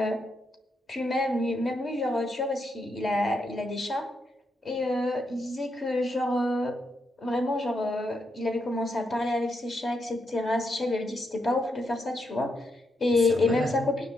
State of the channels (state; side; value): normal; both; correlation 0.81